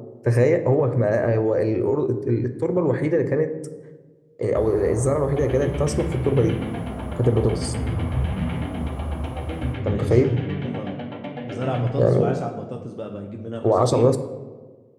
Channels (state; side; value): identical; both; correlation 1.00